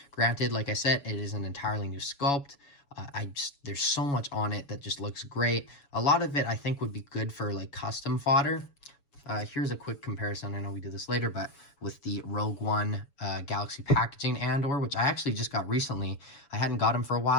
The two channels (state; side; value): late; right; 7.1 ms